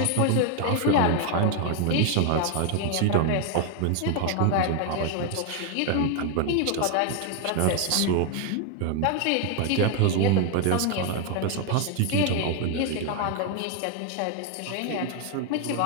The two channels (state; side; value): different; both; correlation 0.01